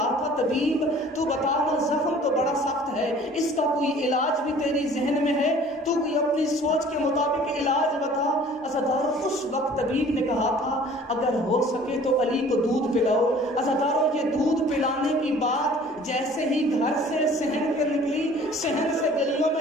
تھا طبیب تو بتا نا، زخم تو بڑا سخت ہے، اس کا کوئی علاج بھی تیری ذہن میں ہے، تو کوئی اپنی سوچ کے مطابق علاج بتا. عزادارو، اس وقت طبیب نے کہا تھا اگر ہو سکے تو علی کو دودھ پلاؤ. عزادارو، یہ دودھ پلانے کی بات جیسے ہی گھر سے صحن کے نکلی، صحن سے گلیوں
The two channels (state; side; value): normal; both; correlation 0.50